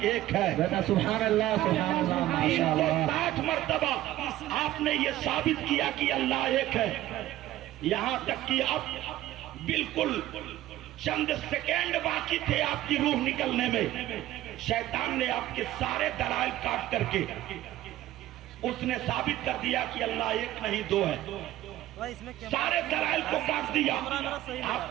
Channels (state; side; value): quieter; left; 14.6 dB